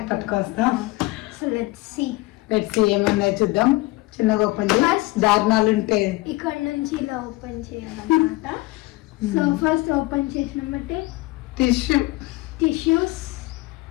పట్టుకొస్తాం. సో లెట్స్ సీ ఏముందో చూద్దాం. చిన్నగా ఓపెన్ చేసి దారుణాలు ఉంటే ఇక్కడ నుంచి ఇలా ఓపెన్ చేయాలన్నమాట. సో ఫస్ట్ ఓపెన్ చేసినామంటే టిష్యూస్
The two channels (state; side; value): quieter; right; 20.8 dB